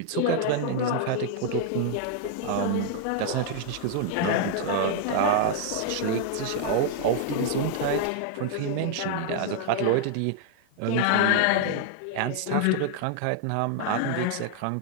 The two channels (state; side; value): different; both; correlation 0.00